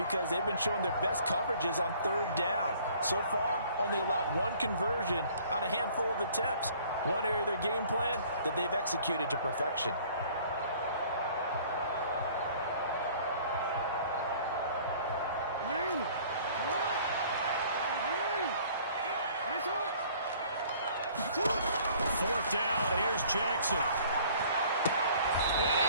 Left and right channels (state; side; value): inverted; both; correlation -0.54